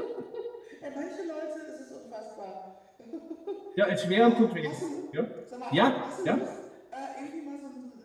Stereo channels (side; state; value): both; identical; correlation 1.00